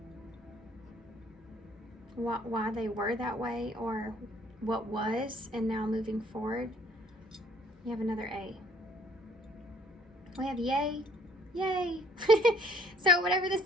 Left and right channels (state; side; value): normal; both; correlation 0.60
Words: Why they were that way, or what was, and now moving forward. You have another A. We have yay. Yay. So whatever this